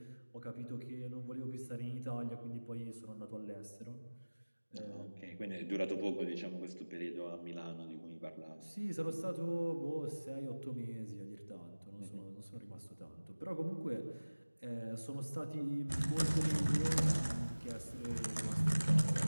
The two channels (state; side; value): inverted; both; correlation -1.00